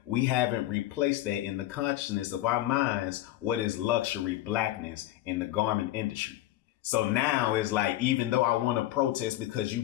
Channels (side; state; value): right; quieter; 14.8 dB